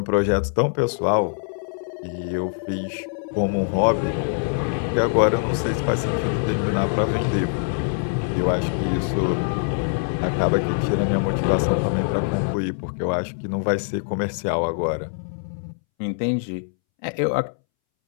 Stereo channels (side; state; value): right; silent; 63 dB below the other